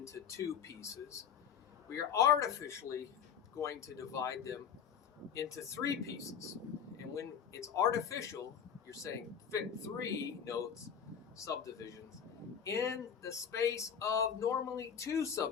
2 pieces. We are artificially going to divide them into 3 pieces. And when it's artificial, you're saying fit 3 notes, subdivisions, in the space of normally 2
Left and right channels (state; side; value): quieter; right; 7.8 dB